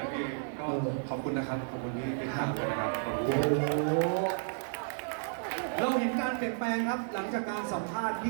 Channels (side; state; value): left; silent; digital silence